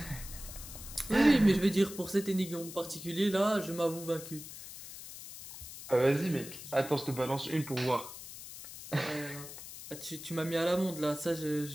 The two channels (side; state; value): left; noise; hiss, 13 dB below the sound